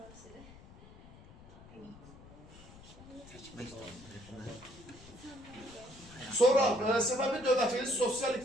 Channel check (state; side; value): noise; left; rumble, 20 dB below the sound